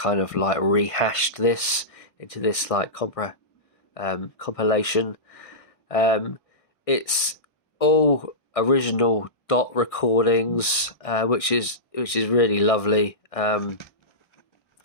of like rehashed this into this like compilation. It's all original dot recordings, which is really lovely. Because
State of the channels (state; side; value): late; right; 1.6 ms